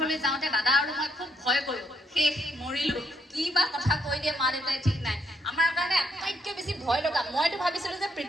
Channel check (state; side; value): normal; both; correlation 0.73